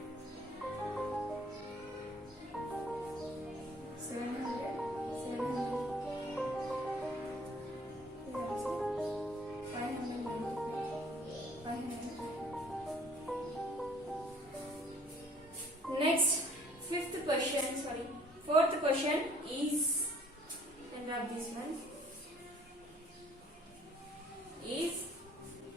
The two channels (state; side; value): normal; both; correlation 0.57